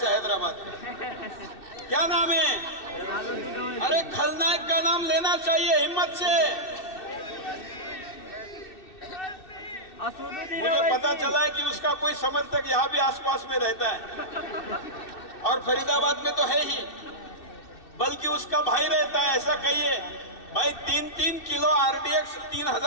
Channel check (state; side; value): late; right; 2.6 ms